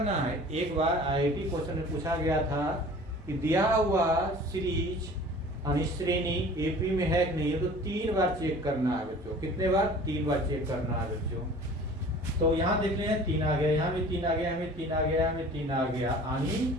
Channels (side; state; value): both; normal; correlation 0.45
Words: है। एक बार आईआईटी क्वेश्चन में पूछा गया था कि दिया हुआ सीरीज यानी श्रेणी एपी में है कि नहीं है, तो 3 बार चेक करना है बच्चों। कितने बार 3 बार चेक करना है बच्चों। तो यहाँ देख लें 3 आ गया, यहाँ भी 3 आ गया, हमें 3 आ गया, हमें 3 आ गया,